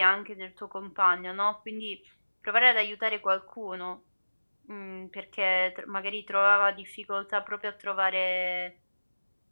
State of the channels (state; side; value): inverted; both; correlation -1.00